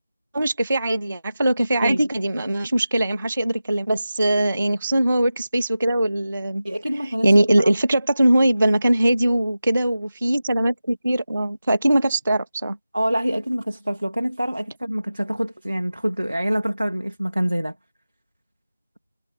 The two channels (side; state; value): both; inverted; correlation -0.94